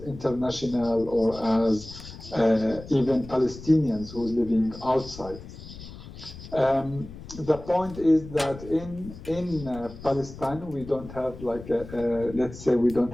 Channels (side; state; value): left; noise; rumble, 14 dB below the sound